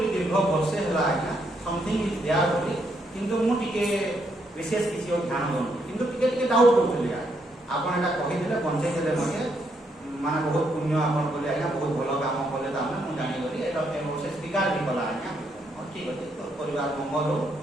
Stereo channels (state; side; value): normal; both; correlation 0.76